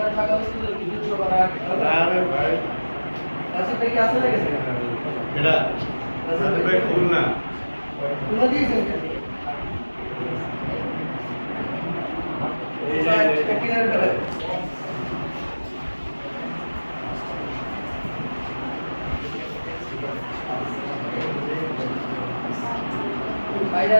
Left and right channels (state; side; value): inverted; both; correlation -1.00